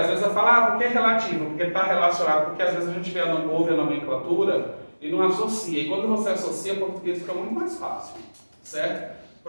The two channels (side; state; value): both; inverted; correlation -1.00